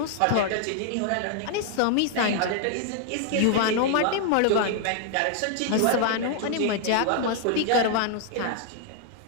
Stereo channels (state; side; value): different; both; correlation 0.00